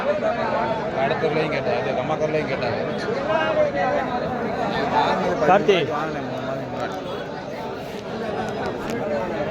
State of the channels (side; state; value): both; identical; correlation 1.00